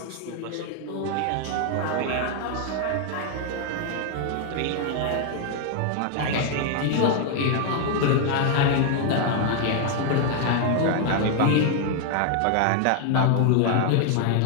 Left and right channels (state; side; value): different; both; correlation 0.00